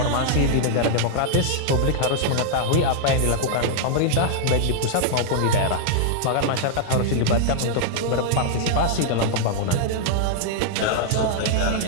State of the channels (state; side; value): different; both; correlation -0.01